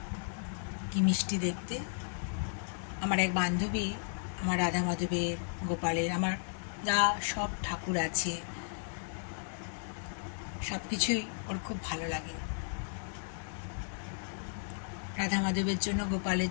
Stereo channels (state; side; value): silent; right; digital silence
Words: কি মিষ্টি দেখতে। আমার এক বান্ধবী আমার রাধা মাধবের, গোপালের, আমার যা সব ঠাকুর আছে সব কিছুই ওর খুব ভালো লাগে। রাধা মাধবের জন্য, গোপালের